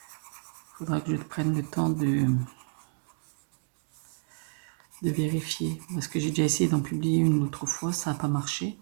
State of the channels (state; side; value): silent; left; digital silence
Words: Faudra que je prenne le temps de vérifier. Parce que j'ai déjà essayé d'en publier une autre fois, ça n'a pas marché.